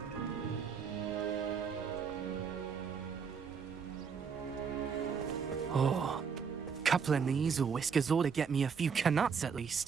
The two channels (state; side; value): quieter; left; 6.3 dB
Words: Oh, couple of Neasel whiskers ought to get me a few canuts at